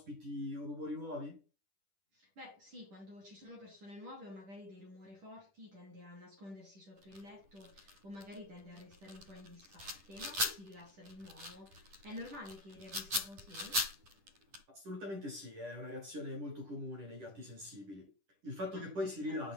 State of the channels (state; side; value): late; left; 10 ms